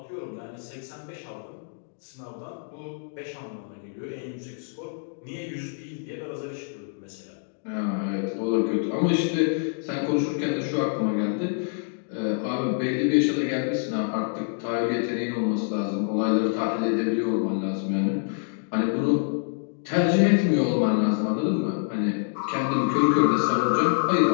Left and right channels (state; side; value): silent; right; digital silence